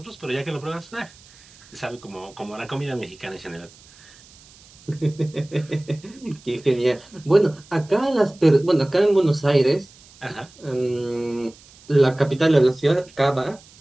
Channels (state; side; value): noise; right; hiss, 25 dB below the sound